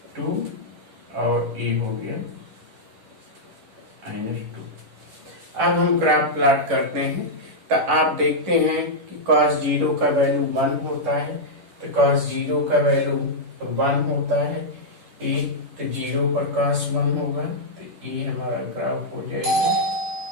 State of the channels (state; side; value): late; left; 10 ms